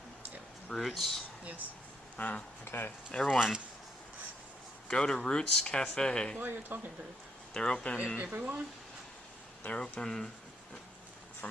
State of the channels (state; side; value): normal; both; correlation 0.75